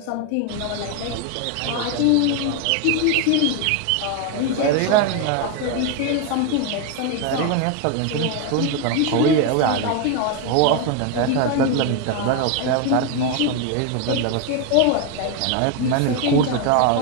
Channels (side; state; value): both; different; correlation 0.01